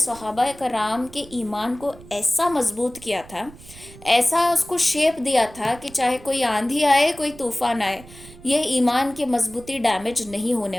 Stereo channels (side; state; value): right; noise; rumble, 20 dB below the sound